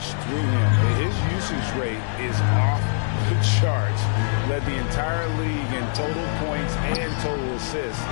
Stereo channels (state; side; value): silent; right; 63 dB below the other